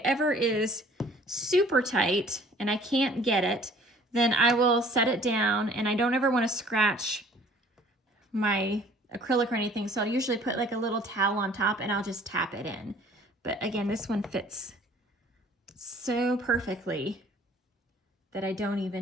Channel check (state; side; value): normal; both; correlation 0.54